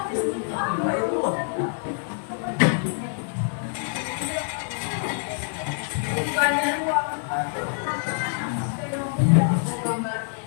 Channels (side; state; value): right; silent; digital silence